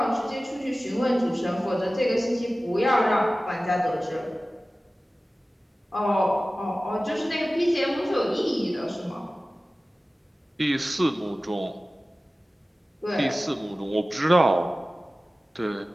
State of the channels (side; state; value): both; normal; correlation 0.96